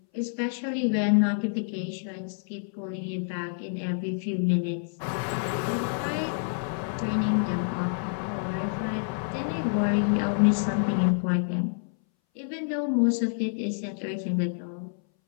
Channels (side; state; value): right; silent; 59 dB below the other